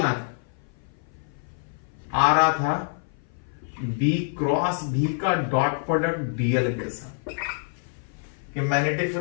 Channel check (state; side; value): silent; right; 56 dB below the other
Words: था, आ रहा था बी क्रॉस बी का डॉट प्रोडक्ट डीएल के साथ, कि मैग्नेटिक